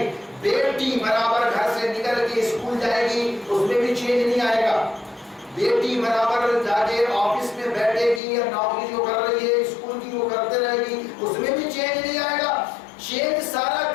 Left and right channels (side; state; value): right; drops out; at 8.2 s